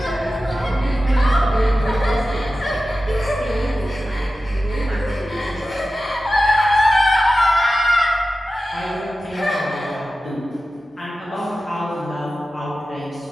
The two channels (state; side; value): normal; both; correlation 0.94